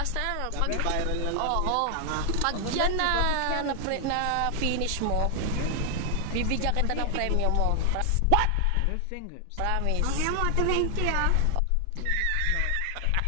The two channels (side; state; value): both; different; correlation 0.00